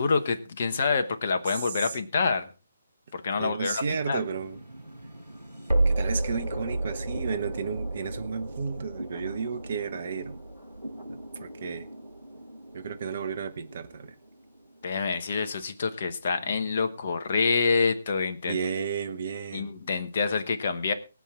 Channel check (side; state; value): both; inverted; correlation -0.80